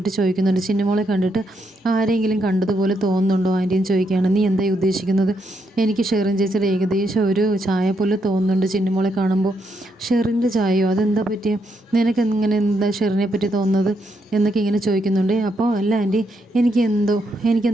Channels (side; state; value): both; normal; correlation 0.79